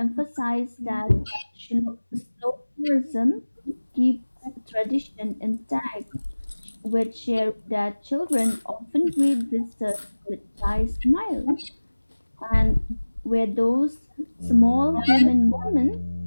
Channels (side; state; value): both; inverted; correlation -1.00